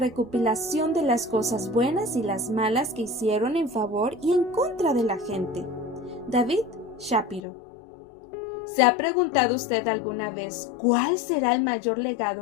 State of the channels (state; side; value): drops out; right; at 7.4 s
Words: de las cosas buenas y las malas que hicieron en favor y en contra de la gente. David Shapiro. ¿Se ha preguntado usted alguna vez cuál será el mayor